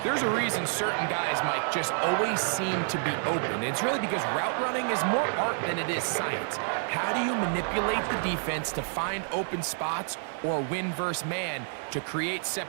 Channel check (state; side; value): silent; left; 59 dB below the other